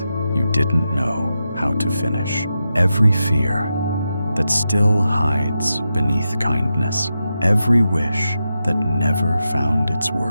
you didn't know how to finish. Every fear that still hides beneath kindness. Every wish that never found its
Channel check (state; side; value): inverted; both; correlation -0.89